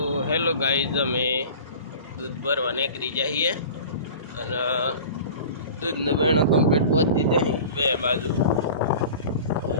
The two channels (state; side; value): inverted; both; correlation -0.39